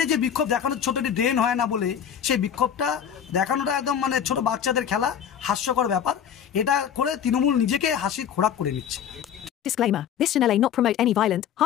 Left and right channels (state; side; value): quieter; right; 8.7 dB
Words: যে বিক্ষোভ দেখানোর, ছোট একটি ড্রেন হয় না বলে সেই বিক্ষোভটা দেখানোটা একদম ছোট বাচ্চাদের খেলা, হাস্যকর ব্যাপার। এটা করে তৃণমূল নিজেকে হাসির খোরাক করে নিচ্ছে। Disclaimer. This channel may not promote any violent,